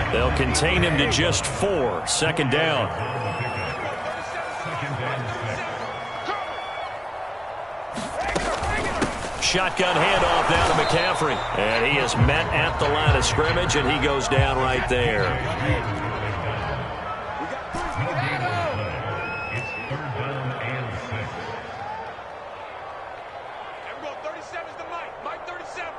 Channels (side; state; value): both; identical; correlation 1.00